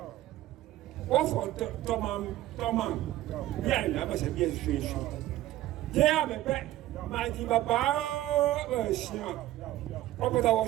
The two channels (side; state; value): left; quieter; 14.9 dB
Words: what for Tomam? Yeah, never said yes, fish. Yeah, I'm a pet. My dear Papa was shot. Robert